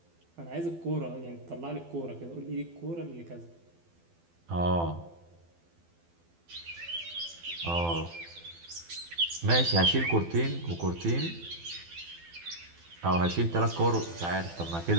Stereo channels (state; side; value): late; left; 12 ms